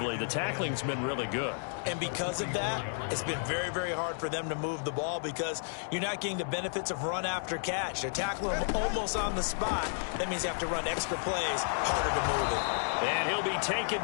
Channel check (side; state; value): right; silent; digital silence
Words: the tackling's been really good. And because of that, it's been very, very hard for them to move the ball because you're not getting the benefits of run after catch. They're tackling them almost on the spot. That means you have to run extra plays, harder to move it. And he'll be taken